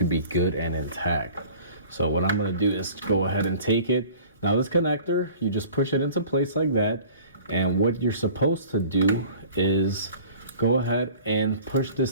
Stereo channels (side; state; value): both; inverted; correlation -0.46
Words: be good and intact. So what I'm going to do is go ahead and take it. Now this connector, you just push it into place like that. And what you're supposed to do is go ahead and push this